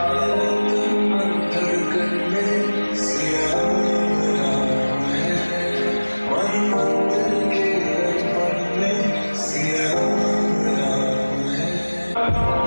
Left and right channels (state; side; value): inverted; both; correlation -1.00